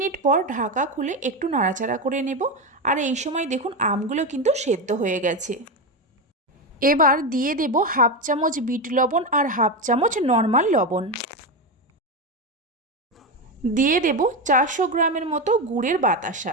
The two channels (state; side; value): normal; both; correlation 0.14